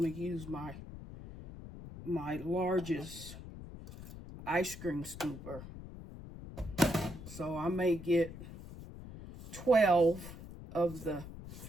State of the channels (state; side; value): noise; left; rumble, 13 dB below the sound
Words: to use my largest ice cream scooper. So I may get 12 of the